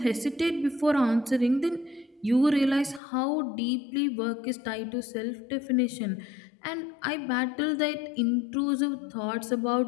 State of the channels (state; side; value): drops out; right; at 3.0 s